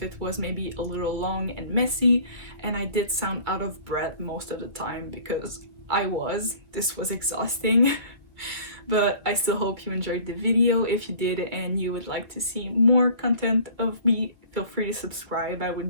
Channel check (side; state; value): left; late; 2.1 ms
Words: it was maybe a little long and messy, and I did sound out of breath most of the time because this was exhausting. But I still hope you enjoyed the video. If you did and you would like to see more content of me, feel free to subscribe. I